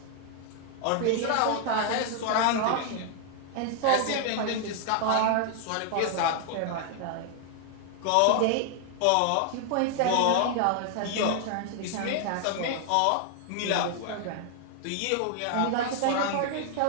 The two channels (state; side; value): different; both; correlation 0.00